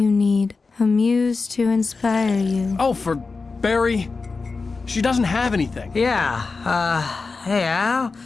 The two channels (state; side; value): quieter; right; 4.2 dB